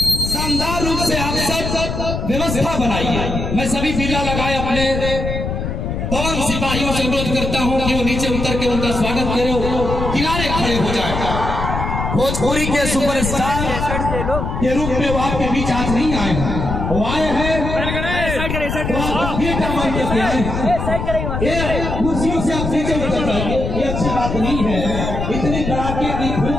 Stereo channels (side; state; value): left; noise; rumble, 3 dB below the sound